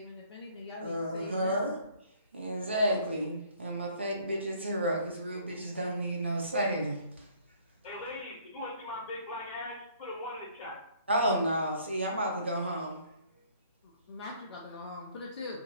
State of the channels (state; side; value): inverted; both; correlation -0.60